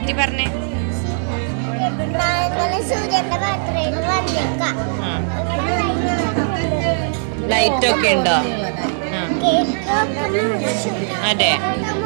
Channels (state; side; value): silent; left; 64 dB below the other